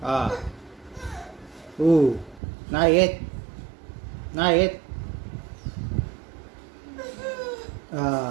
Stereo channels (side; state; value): left; drops out; at 2.4 s